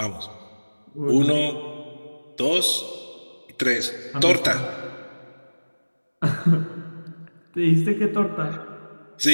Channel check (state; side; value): inverted; both; correlation -1.00